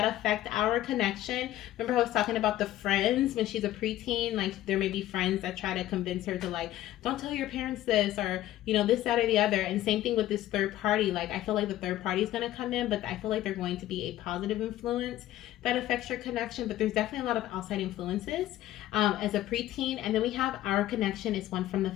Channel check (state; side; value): quieter; right; 14.1 dB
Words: affect our connection. Remember I was talking about the friends when she's a preteen? Like there may be friends that try to convince her to like, don't tell your parents this or, this, that, or the other. And same thing with this third party. Like I feel like the third party is going to come in, but I feel like they're going to be a positive influence that affects your connection. But there's definitely a lot of outside influences as a preteen. And then we have our connection is one from the